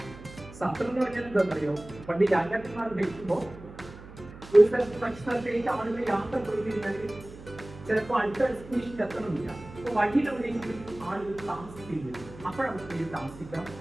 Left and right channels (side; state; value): right; noise; hum, 17 dB below the sound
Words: സത്രം എന്ന് പറഞ്ഞാൽ എന്താണെന്നറിയോ? പണ്ട് രാജാക്കന്മാർ ഭരിക്കുമ്പോൾ ഒരു സ്ഥലത്ത് മറ്റു സ്ഥലത്തേക്ക് ആളുകൾ യാത്ര പോയി കഴിഞ്ഞാൽ ചിലപ്പോൾ അടുത്ത ഡെസ്റ്റിനേഷനിൽ എത്തണമെന്നില്ല. അപ്പോൾ വഴിയിലെവിടെയെങ്കിലും ആളുകൾ താമസിക്കുന്നത്, അപ്പോഴവർക്ക് താമസിക്കാം,